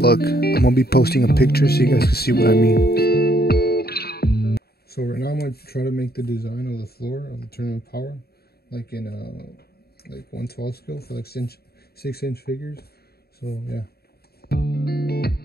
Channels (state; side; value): late; right; 0.46 ms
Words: I'm gonna be posting a picture so you guys can see what I mean. So right now I'm gonna try to make the design of the floor of the tournament power like in like 1/12 scale for like 6-inch figures. So yeah.